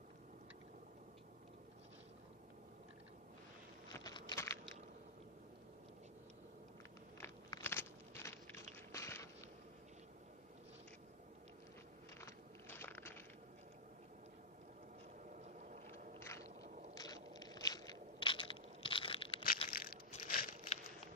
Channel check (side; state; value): both; normal; correlation -0.06